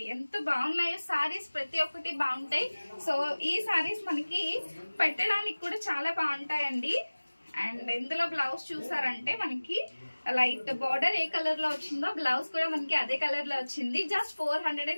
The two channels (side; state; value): both; inverted; correlation -1.00